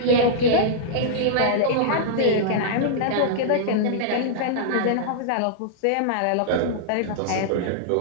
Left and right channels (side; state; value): both; different; correlation -0.02